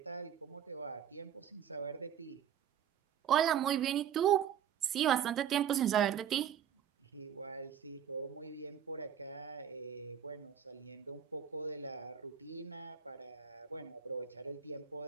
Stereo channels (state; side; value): quieter; left; 9.1 dB